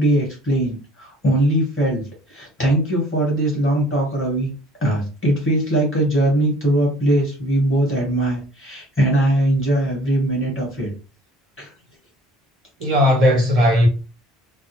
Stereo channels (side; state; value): both; normal; correlation 0.55